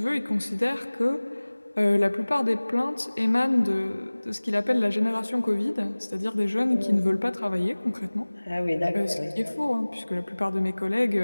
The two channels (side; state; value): both; inverted; correlation -1.00